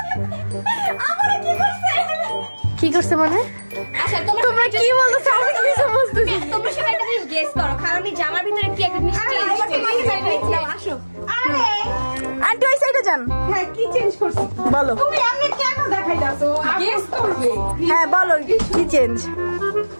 কি করছে মানে? আচ্ছা তোমরা কি বলতেছো আমি কিছু বুঝতেছি না। তোমরা সবাই একটা জিনিস গেস করো, খালামণি জামার ভিতরে কি একটা জিনিস আসো। আরে আন্টি ওই সাইডে যান। হ্যাঁ, কি চেঞ্জ করছি বলো। তুমি এমনি কেন দেখাইতাছো? গেস করবে। হ্যাঁ বলো কি চেঞ্জ।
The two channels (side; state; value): both; inverted; correlation -1.00